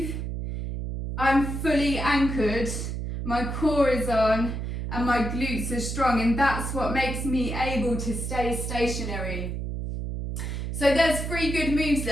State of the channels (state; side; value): noise; right; hum, 4 dB below the sound